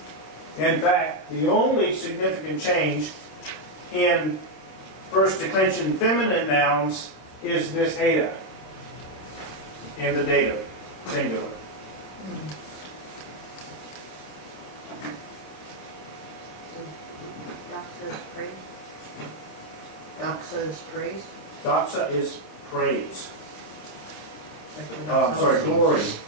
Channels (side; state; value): right; late; 27 ms